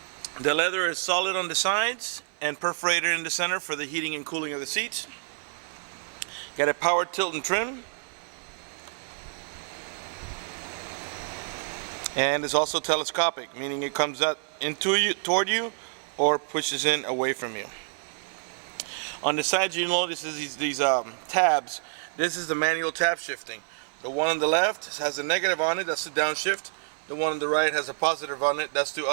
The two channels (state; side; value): silent; left; 58 dB below the other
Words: The leather is solid on the sides and perforated in the center for the heating and cooling of the seats. Got a power tilt and trim. And it's also telescopic, meaning it comes out toward you or pushes in away from you. On the sides, you notice these tabs. This is the manual tab shifting. The one on the left has a negative on it, that's the downshift. The one on the right has a positive on it, that's the